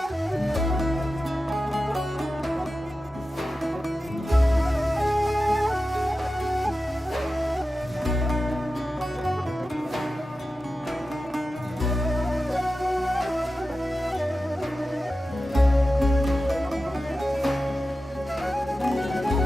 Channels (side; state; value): both; normal; correlation 0.93